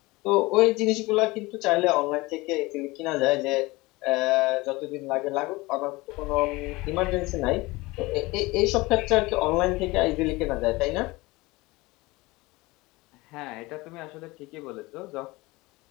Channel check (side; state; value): right; quieter; 21.9 dB